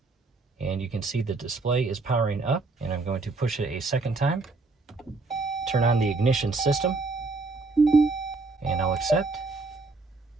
And you can see the display is powering up, and I'm going to push it a second time. Turn on the ignition system, and I'll accept.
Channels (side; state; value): left; quieter; 3.6 dB